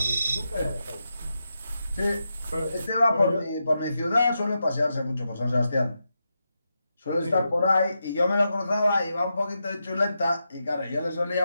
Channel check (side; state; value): both; inverted; correlation -0.87